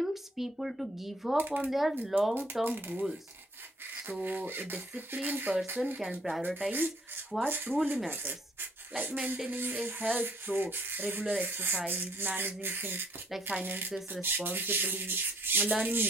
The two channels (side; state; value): both; normal; correlation 0.63